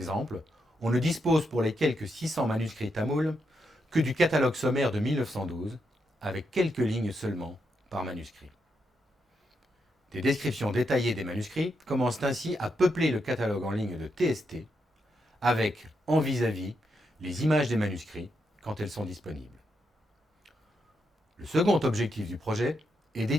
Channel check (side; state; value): both; normal; correlation 0.82